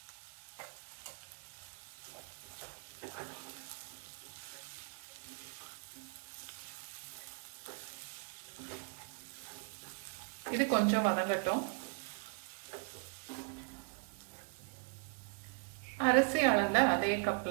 இது கொஞ்சம் வதங்கட்டும். அரிசி அளந்த அதே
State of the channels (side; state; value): left; quieter; 38.3 dB